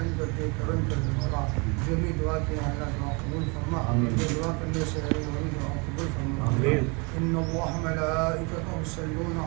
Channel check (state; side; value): quieter; left; 30.9 dB